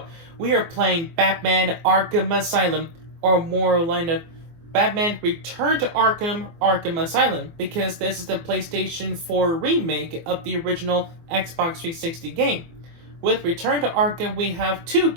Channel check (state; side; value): late; left; 24 ms